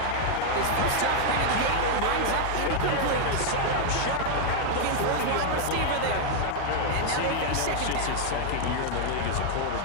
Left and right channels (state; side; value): different; both; correlation 0.00